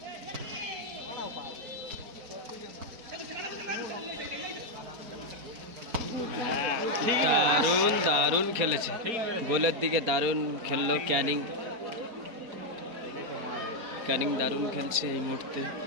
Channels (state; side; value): late; left; 4.3 ms